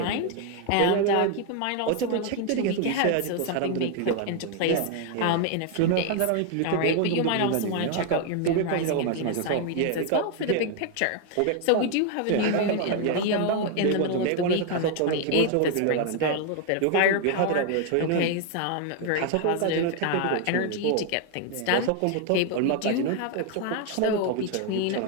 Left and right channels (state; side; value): different; both; correlation 0.00